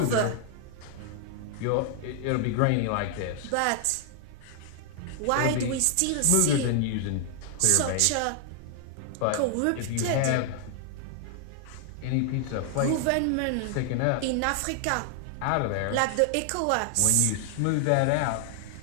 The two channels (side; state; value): both; different; correlation 0.00